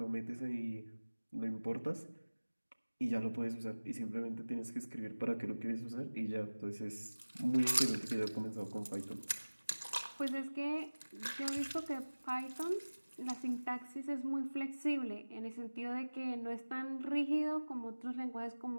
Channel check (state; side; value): inverted; both; correlation -1.00